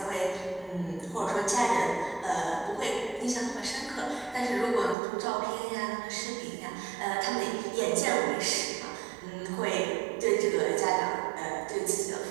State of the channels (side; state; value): left; drops out; at 5.0 s